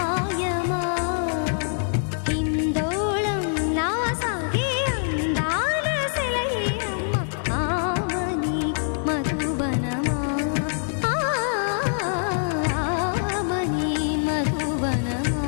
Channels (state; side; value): silent; right; digital silence